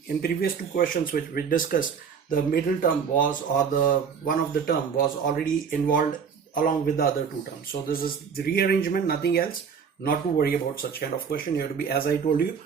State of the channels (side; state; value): left; quieter; 6.5 dB